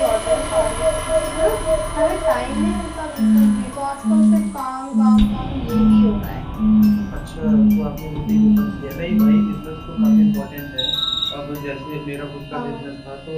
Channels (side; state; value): both; identical; correlation 1.00